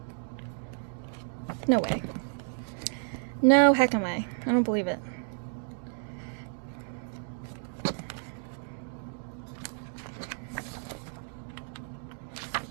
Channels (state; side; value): silent; left; 57 dB below the other